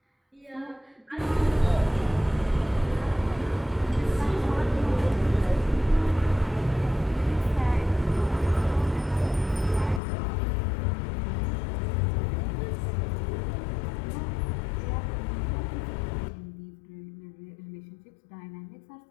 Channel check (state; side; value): drops out; right; at 10.0 s